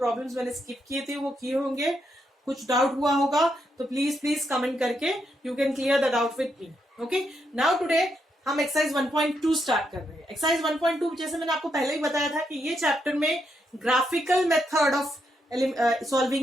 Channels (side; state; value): both; normal; correlation 0.80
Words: मैंने स्किप किए थे वो किए होंगे. कुछ डाउट हुआ होगा तो प्लीज कमेंट करके you can clear the doubt with me. Okay, now today हम एक्सरसाइज 1.2 स्टार्ट कर रहे हैं. एक्सरसाइज 1.2 जैसे मैंने आपको पहले ही बताया था कि ये चैप्टर में graphical method of